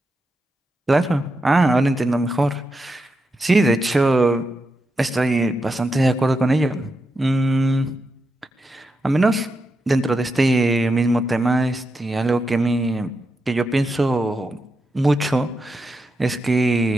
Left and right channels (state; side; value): normal; both; correlation 0.86